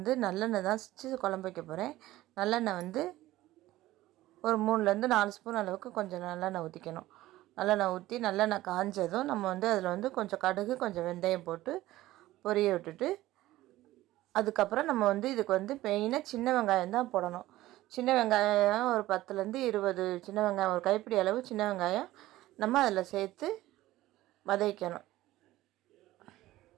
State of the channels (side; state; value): left; quieter; 16.2 dB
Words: நல்லெண்ணெய் தான் வச்சு குழம்பு வைக்க போகிறேன். நல்லெண்ணெய் ஒரு 3லேருந்து 4 ஸ்பூன் அளவுக்கு கொஞ்சம் நல்லெண்ணெய் ஊற்றிக்கணும். நல்லெண்ணெய் ஊற்றி நல்லெண்ணெய் காஞ்சதும் நம்ம அதில் கொஞ்சம் கடுகு, கொஞ்சம் வெந்தயம் போட்டு பொரிய விட்டுட்டு, அதுக்கப்புறம் நம்ம இதுக்கு மெயினாக சின்ன வெங்காயம் தான் போடணும். சின்ன வெங்காயம் ஒரு 10லேருந்து 20 சின்ன வெங்காயம், ஒரு கைப்பிடி அளவு சின்ன வெங்காயம் நம்ம அதில் சேர்த்து வதக்கணும்.